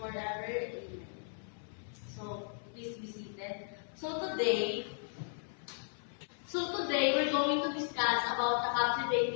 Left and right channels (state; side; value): silent; right; 54 dB below the other